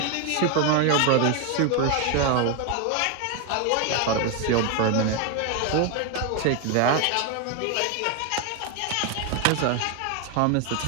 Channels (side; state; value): both; different; correlation 0.01